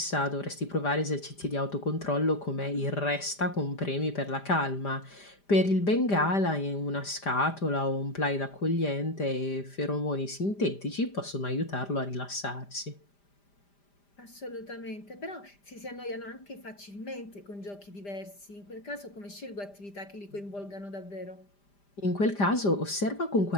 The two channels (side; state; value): right; late; 5.0 ms